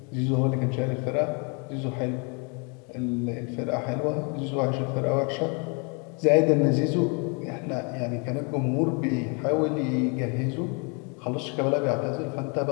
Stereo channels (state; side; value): quieter; right; 34.8 dB